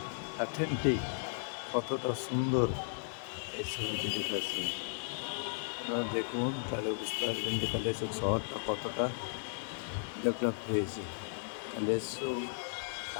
অথেন্টিক, কতটা সুন্দর এই ছবিটি দেখাচ্ছে। আপনারা দেখুন তাহলে বুঝতে পারবেন যে কালিয়াচক শহরটা কতটা ডেভেলপ হয়েছে। কালিয়াচক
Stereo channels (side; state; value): right; silent; digital silence